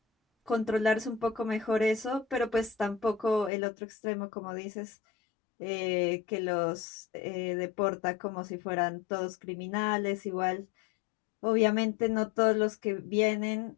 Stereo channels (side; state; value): right; drops out; at 3.5 s